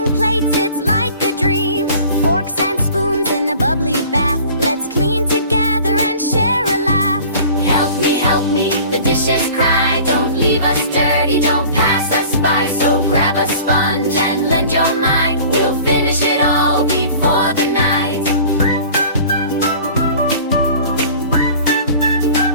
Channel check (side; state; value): both; inverted; correlation -0.45